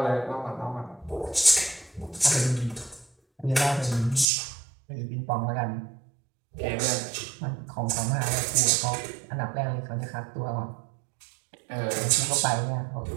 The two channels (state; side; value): drops out; left; at 4.2 s